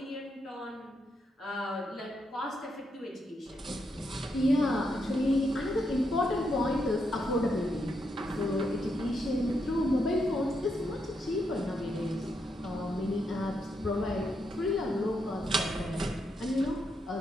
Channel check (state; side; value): normal; both; correlation 0.80